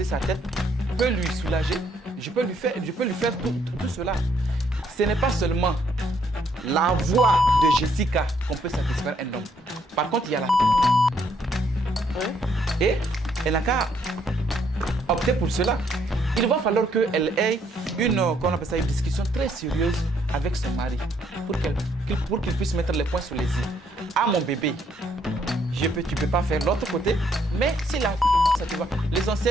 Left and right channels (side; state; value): both; normal; correlation 0.70